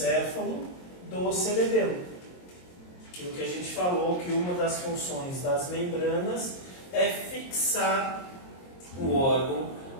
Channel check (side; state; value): right; late; 22 ms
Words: do cerebelo. Aquilo que a gente falou, que uma das funções das membranas é fixar o órgão